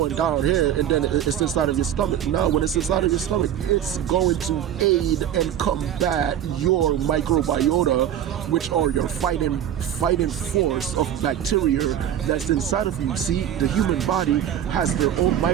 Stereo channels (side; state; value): left; quieter; 10.3 dB